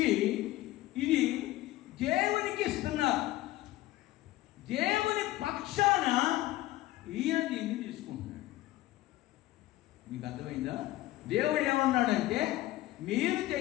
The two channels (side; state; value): right; quieter; 16.5 dB